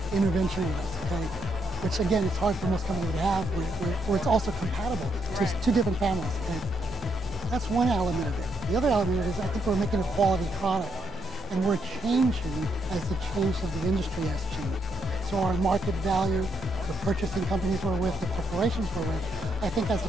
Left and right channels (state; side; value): normal; both; correlation 0.76